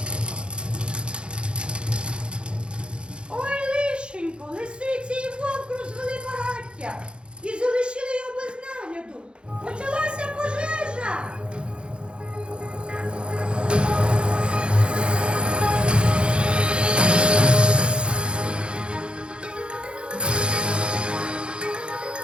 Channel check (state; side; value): late; left; 0.055 ms